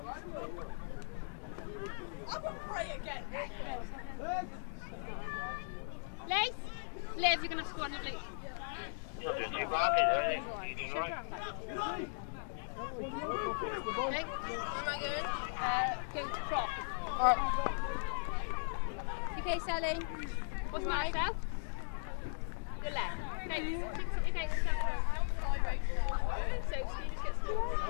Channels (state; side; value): silent; right; digital silence